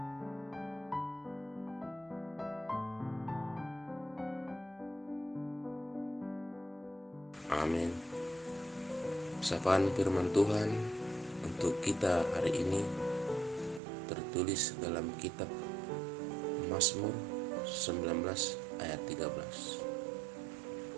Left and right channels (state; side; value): drops out; left; at 13.8 s